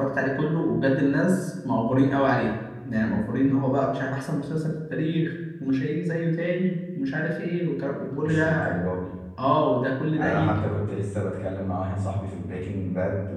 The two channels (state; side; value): identical; both; correlation 1.00